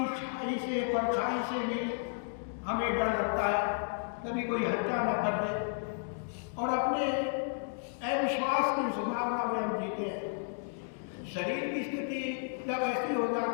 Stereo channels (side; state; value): right; silent; digital silence